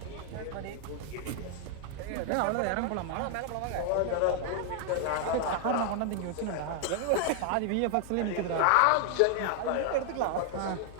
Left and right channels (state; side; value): different; both; correlation 0.00